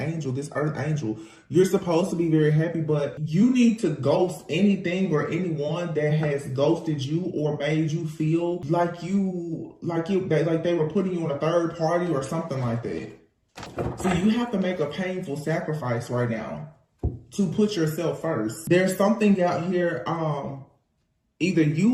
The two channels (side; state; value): both; identical; correlation 1.00